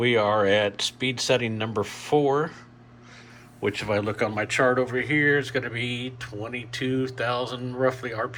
are at speed setting number 4, which if I look on my chart over here, is going to be 22,000 roughly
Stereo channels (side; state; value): both; identical; correlation 1.00